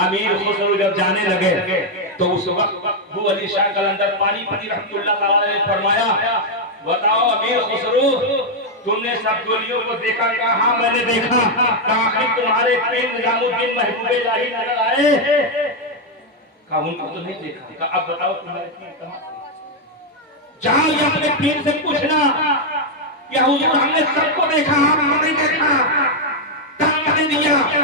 امیر خسرو جب جانے لگے تو اس وقت ابو علی شاہ قلندر پانی پتی رحمۃ اللہ تعالیٰ نے فرمایا بتاؤ امیر خسرو تم نے سب گولیوں کو دیکھا؟ کہا ہاں میں نے دیکھا۔ کہا تمہارے پیر نظام الدین محبوب الہی نظر آئے؟ کہا ان کو تو نہیں دیکھا۔ کہا اب بتاؤ تمہارے پیر کہاں؟ جاؤ یہ اپنے پیر سے پوچھنا کہ حضور ہم نے سب کو دیکھا آپ کو نہیں دیکھا، دھکا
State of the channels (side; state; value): both; normal; correlation 0.01